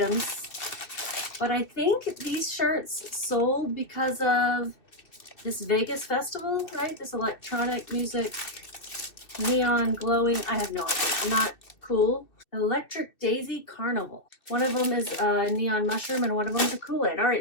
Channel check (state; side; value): late; right; 2.6 ms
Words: but I think these shirts sold because of this Vegas festival, right? This electronic music, neon glowing, I have no idea, not cool. Electric Daisy Carnival. One of them is a neon mushroom and one of them is a Kool-Aid. All